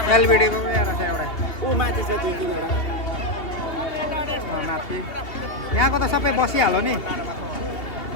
एलबिडीको यहाँ रहेछ एउटा ऊ माथि छ 2-3 माथि यहाँको त सबै बसिहाल्यो नि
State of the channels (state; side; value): late; right; 2.7 ms